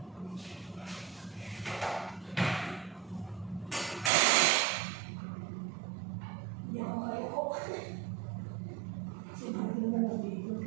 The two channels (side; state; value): left; drops out; at 4.1 s